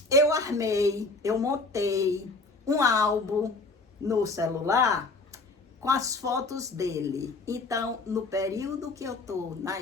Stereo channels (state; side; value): quieter; right; 3.5 dB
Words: Eu montei um álbum no celular com as fotos dele. Então, no período que eu tô na